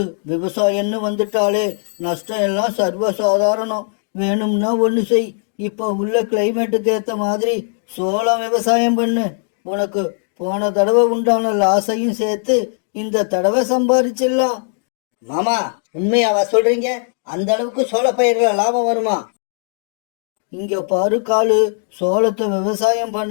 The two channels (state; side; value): silent; right; 66 dB below the other